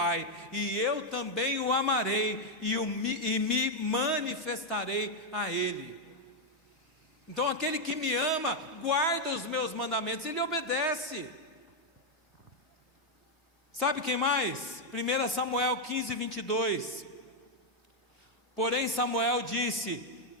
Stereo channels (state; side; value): normal; both; correlation 0.01